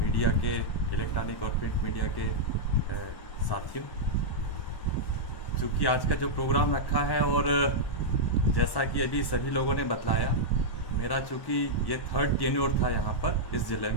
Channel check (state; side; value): late; right; 1.1 ms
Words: के इलेक्ट्रॉनिक और प्रिंट मीडिया के साथियों, चूँकि आज का जो प्रोग्राम रखा है और जैसा कि अभी सभी लोगों ने बतलाया, मेरा चूँकि ये 3rd टेन्योर था यहाँ पर इस ज़िले